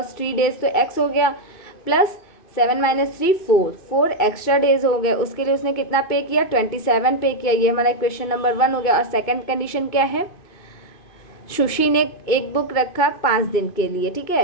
3 डेज तो एक्स हो गया, प्लस 7 - 3 4 एक्स्ट्रा डेज हो गए। उसके लिए उसने कितना पे किया, 27 पे किया। ये हमारा क्वेश्चन नंबर 1 हो गया। और सेकंड कंडीशन क्या है, सुशी ने एक बुक रखा 5 दिन के लिए, ठीक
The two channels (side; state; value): right; late; 2.5 ms